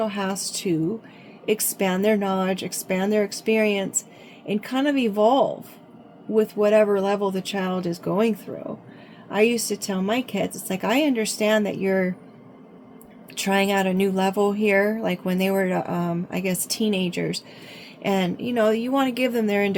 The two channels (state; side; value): identical; both; correlation 1.00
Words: has to expand their knowledge, expand their experience, and kind of evolve with whatever level the child is going through. I used to tell my kids, it's like, I understand that you're trying out a new level here, like when they were, I guess, teenagers. And, you know, you want to give them their